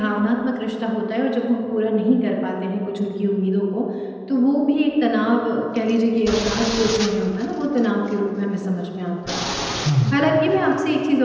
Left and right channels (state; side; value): identical; both; correlation 1.00